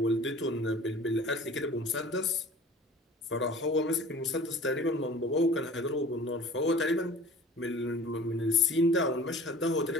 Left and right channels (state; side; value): normal; both; correlation 0.44